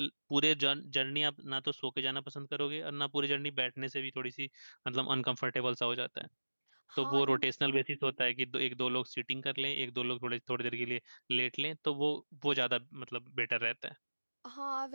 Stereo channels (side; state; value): both; inverted; correlation -1.00